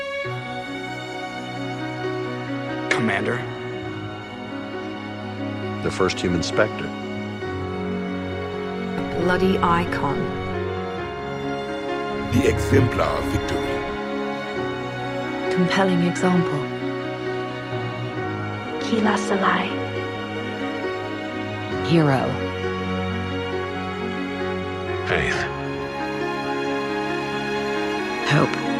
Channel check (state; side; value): identical; both; correlation 1.00